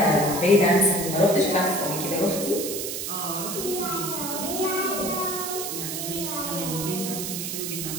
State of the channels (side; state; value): right; noise; hiss, 4 dB below the sound